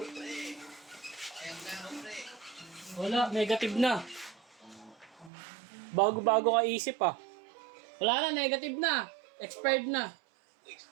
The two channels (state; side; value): drops out; left; at 5.3 s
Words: Wala, negative na. Bago-bago ka isip ah. Wala na, negative na. Expired na.